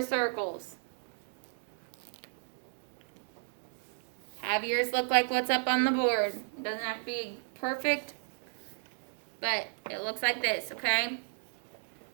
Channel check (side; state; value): left; silent; digital silence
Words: circles. Have yours look like what's up on the board. It doesn't have to be perfect, but it looks like this, okay?